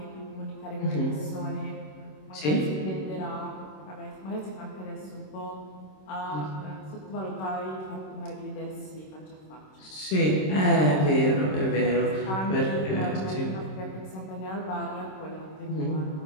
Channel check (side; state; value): right; late; 26 ms